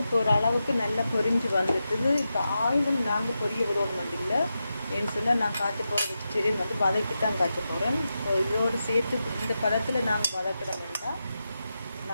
இப்போ ஒரு அளவுக்கு நல்லா பொரிஞ்சு வந்துட்டுது. இப்போ ஆயிலும் நாங்கள் பொரிய விடணும் இல்லை. ஏன்னு சொன்னால் நான் காய்ச்ச போகிற வெஜிடேரியன் வந்து வதக்கி தான் காய்ச்ச போகிறேன். ஸோ இதோடு சேர்த்து இந்த பதத்தில் நாங்கள் வதக்கிடமில்லை.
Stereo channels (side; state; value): both; inverted; correlation -0.89